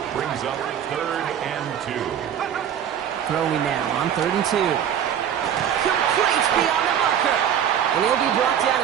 brings up 3rd and 2. Throwing now on 3rd and 2. Complete beyond the marker. And he'll be brought down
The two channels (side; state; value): left; quieter; 9.3 dB